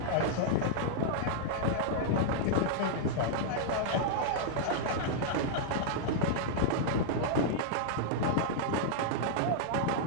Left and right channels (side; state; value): both; different; correlation -0.02